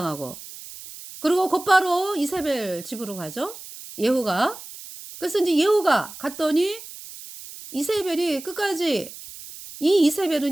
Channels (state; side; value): noise; right; hiss, 15 dB below the sound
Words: 그리고 곧바로 이세벨 집으로 가죠. 예후가. 그래서 인제 예후가 갔더니 이세벨이 끝까지 이